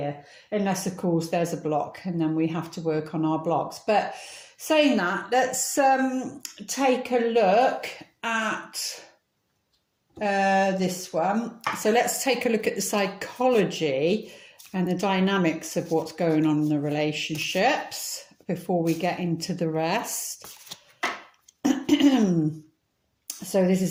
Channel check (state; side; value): identical; both; correlation 1.00